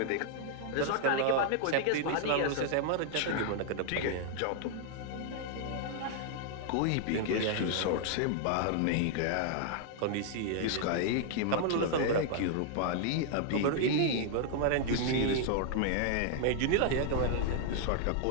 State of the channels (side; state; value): both; different; correlation -0.01